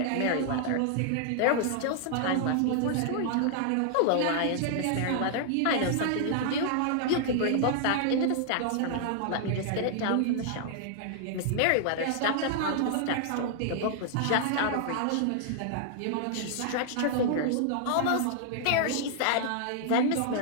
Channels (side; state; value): both; different; correlation -0.01